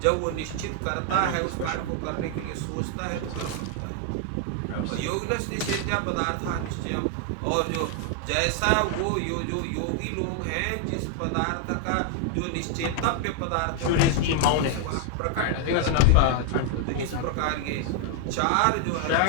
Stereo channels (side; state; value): both; different; correlation 0.00